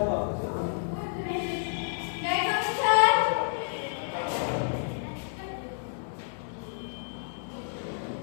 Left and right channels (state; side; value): silent; right; digital silence